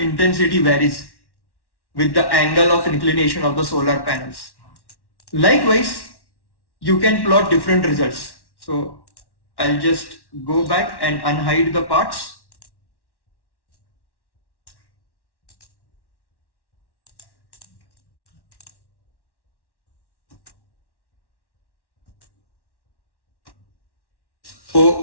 intensity varies with the angle of inclination of the solar panels. Likewise, you can plot different results. So I'll just go back and unhide the parts.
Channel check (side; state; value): right; late; 1.1 ms